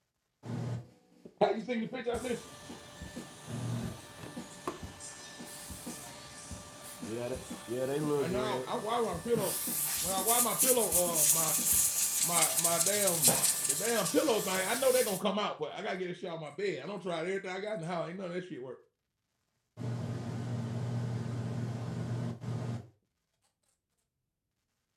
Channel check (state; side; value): identical; both; correlation 1.00